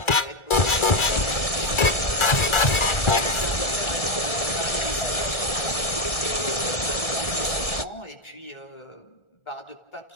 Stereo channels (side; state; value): right; late; 1.4 ms